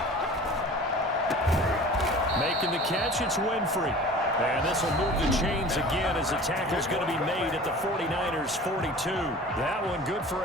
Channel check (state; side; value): normal; both; correlation 0.42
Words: Making the catch, it's Winfrey. And this will move the chains again as the tackle's going to be made at the 49ers' 42. That one good for